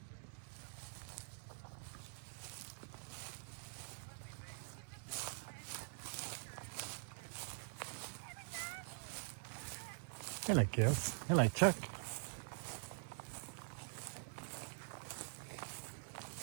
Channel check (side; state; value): left; silent; digital silence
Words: Hello, girls. Hello, Chuck.